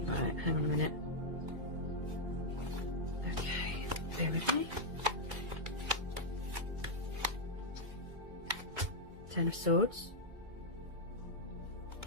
Right, hang on a minute. Okay, bear with me. Ten of Swords.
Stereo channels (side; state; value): left; late; 2.2 ms